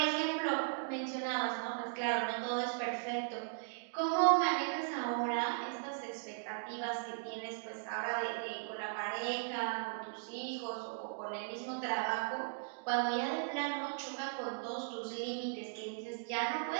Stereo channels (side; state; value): left; silent; digital silence